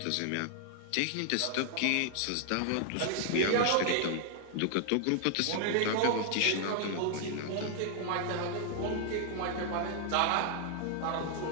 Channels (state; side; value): different; both; correlation 0.00